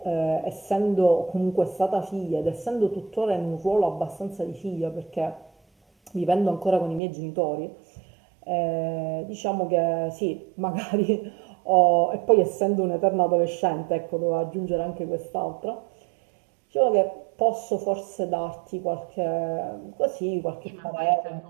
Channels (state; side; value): drops out; left; at 7.0 s